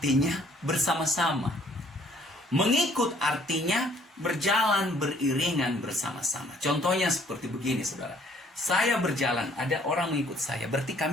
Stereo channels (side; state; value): both; normal; correlation 0.60